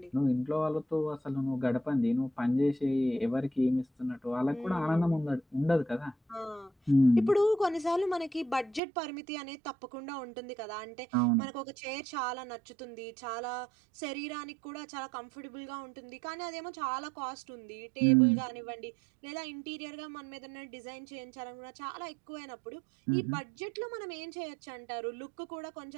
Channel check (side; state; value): left; drops out; at 8.8 s